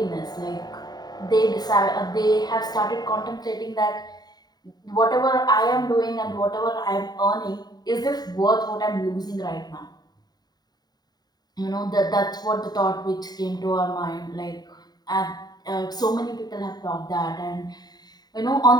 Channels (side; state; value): right; late; 0.20 ms